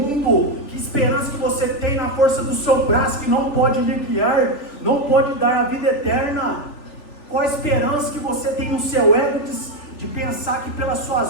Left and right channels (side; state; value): right; late; 3.4 ms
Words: Que esperança que você tem na força do seu braço, que não pode lhe guiar, não pode dar a vida eterna? Qual a esperança que você tem no seu ego de pensar que pelas